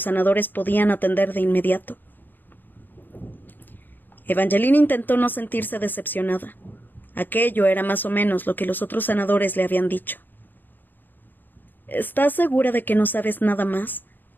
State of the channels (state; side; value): late; right; 0.090 ms